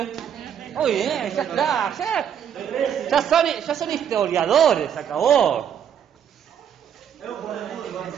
Muy bien, ya está, ya son historiadores, se acabó.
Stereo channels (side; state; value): left; quieter; 8.8 dB